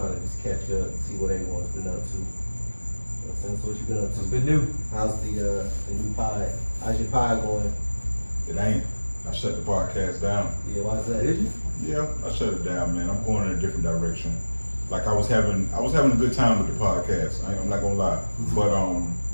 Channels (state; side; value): inverted; both; correlation -1.00